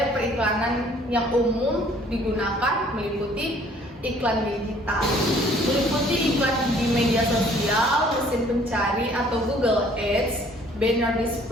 periklanan yang umum digunakan meliputi iklan digital, meliputi iklan di media sosial, mesin pencari atau Google Ads, banner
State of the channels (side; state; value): both; normal; correlation 0.57